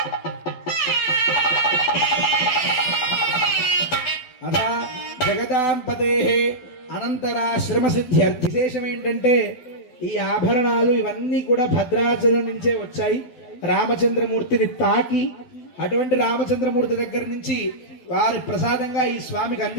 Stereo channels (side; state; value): right; late; 12 ms